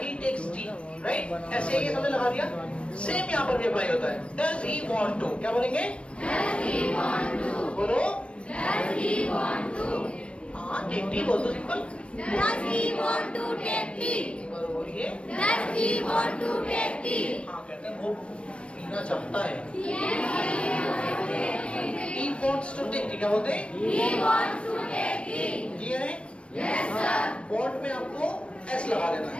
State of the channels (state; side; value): late; right; 0.060 ms